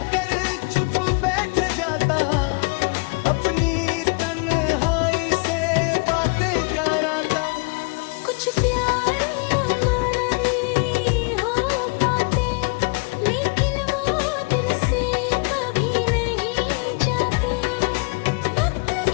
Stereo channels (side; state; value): right; quieter; 32.1 dB